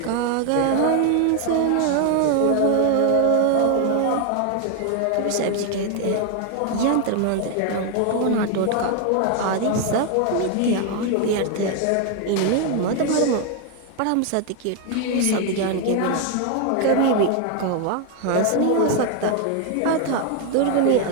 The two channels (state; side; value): different; both; correlation 0.01